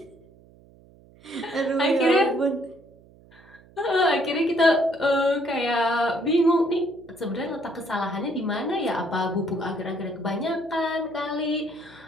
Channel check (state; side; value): noise; right; hum, 26 dB below the sound